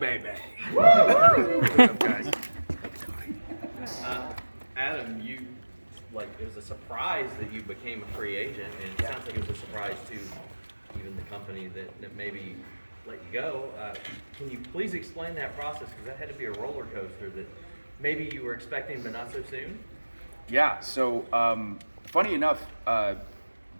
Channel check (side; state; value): both; inverted; correlation -1.00